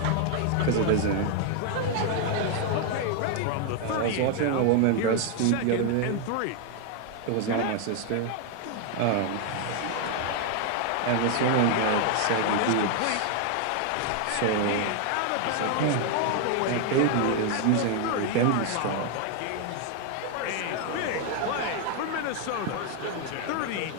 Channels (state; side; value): different; both; correlation 0.00